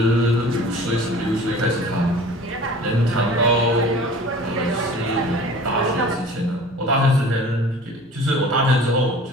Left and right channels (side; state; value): both; normal; correlation 0.43